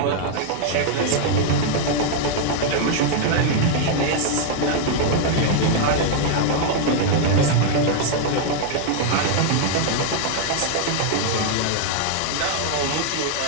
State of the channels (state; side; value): different; both; correlation 0.00